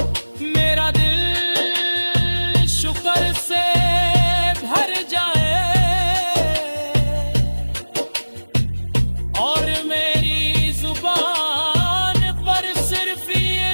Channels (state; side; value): inverted; both; correlation -1.00